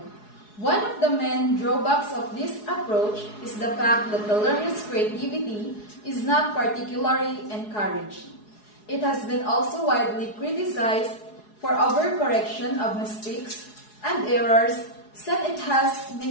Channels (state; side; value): late; right; 4.8 ms